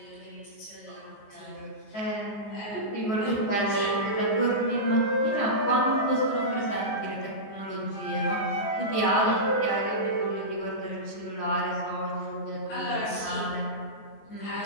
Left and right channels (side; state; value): right; late; 14 ms